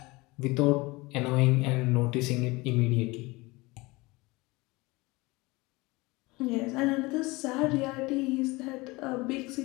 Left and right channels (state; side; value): quieter; right; 23.1 dB